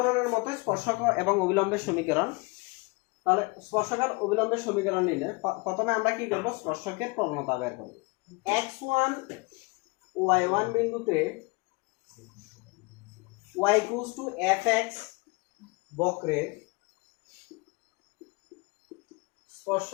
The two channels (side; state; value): right; quieter; 27.7 dB